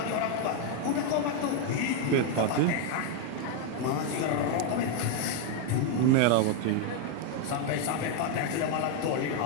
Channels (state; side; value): different; both; correlation 0.01